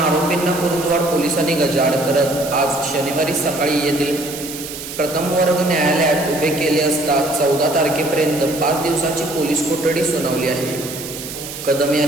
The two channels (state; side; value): noise; right; hiss, 10 dB below the sound